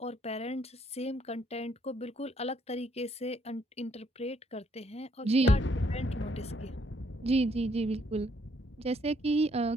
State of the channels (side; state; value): both; normal; correlation 0.69